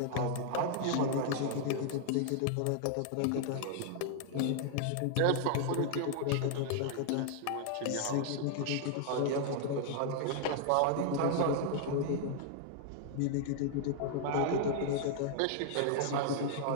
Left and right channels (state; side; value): different; both; correlation -0.01